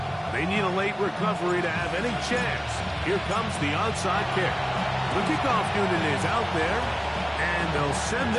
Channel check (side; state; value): both; identical; correlation 1.00